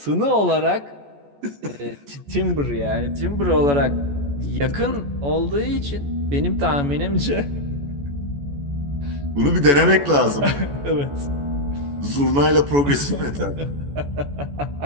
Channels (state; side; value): late; left; 14 ms